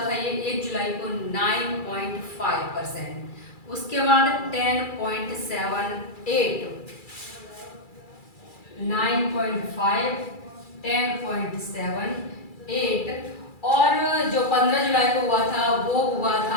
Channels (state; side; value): late; right; 2.3 ms